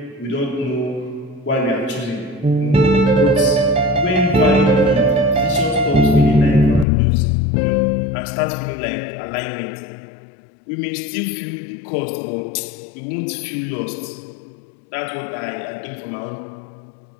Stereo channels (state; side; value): drops out; right; at 6.9 s